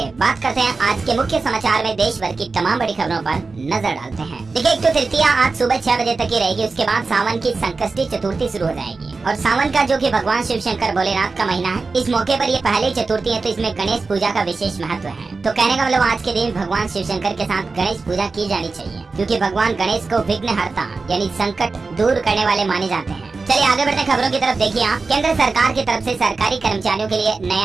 बात करते हैं आज के मुख्य समाचार में देश भर की तमाम बड़ी खबरों पर नजर डालते हैं। देखिए, एक तो तृतीया आज सुबह 6 बजे तक ही रहेगी। उसके बाद सावन की संकष्टी चतुर्थी शुरू हो जाएगी। और सावन का जो कि भगवान शिव शंकर भोलेनाथ का महीना है, इस मौके पर ये पहली चतुर्थी है, तो इसमें गणेश पूजा का विशेष महत्व है। तो कहने का मतलब आज के दिन भगवान शिव शंकर के साथ गणेश पूजा की जानी चाहिए, क्योंकि भगवान गणेश को विघ्नहर्ता यानी संकट दूर करने वाले माने जाते हैं। चलिए आगे बढ़ते खबरों की तरफ। देखिए आप, केंद्र सरकार की तरफ से सरकारी कर्मचारियों के लिए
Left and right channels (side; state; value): left; quieter; 4.1 dB